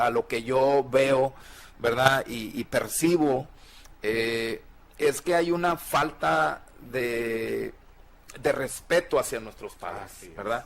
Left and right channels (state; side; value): identical; both; correlation 1.00